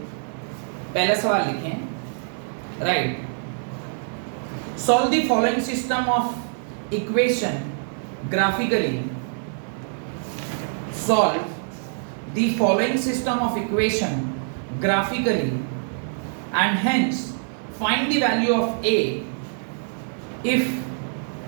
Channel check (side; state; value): left; silent; digital silence